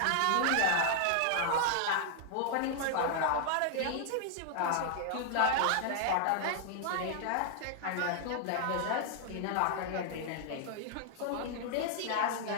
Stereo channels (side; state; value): both; different; correlation -0.01